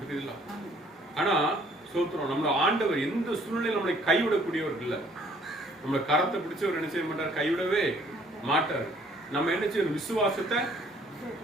ஆனா சோத்திரம், நம்மளோட ஆண்டவர் எந்த சூழ்நிலையில் நம்மளை கைவிடக்கூடியவர் இல்ல. நம்மளை கரத்தை பிடிச்சவர் என்ன செய்ய மாட்டார், கைவிடவே மாட்டார். நம்ம என்ன செய்யணும், விசுவாசத்தை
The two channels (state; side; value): normal; both; correlation 0.60